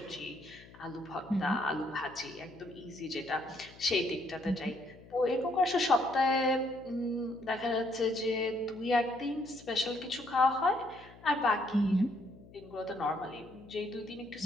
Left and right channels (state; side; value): noise; left; hum, 21 dB below the sound